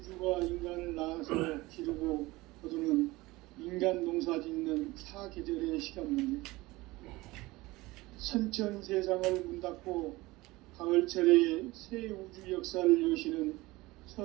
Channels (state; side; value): quieter; left; 20.4 dB